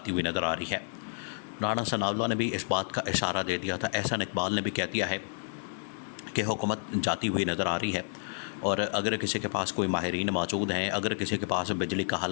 ہوئی نظر آ رہی ہے۔ رانا ثناءاللہ نے بھی اس بات کا اشارہ دے دیا تھا، احسن اقبال نے بھی کہہ دیا ہے کہ حکومت جاتی ہوئی نظر آ رہی ہے، اور اگر کسی کے پاس کوئی ماہرین موجود ہیں، اگر کسی کے پاس بجلی کا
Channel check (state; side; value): silent; right; digital silence